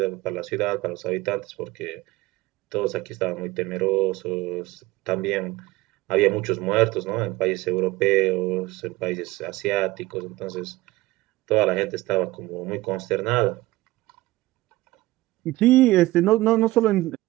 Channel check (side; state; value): left; quieter; 18.9 dB